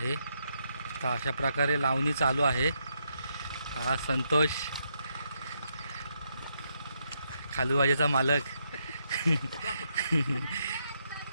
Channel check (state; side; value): inverted; both; correlation -0.79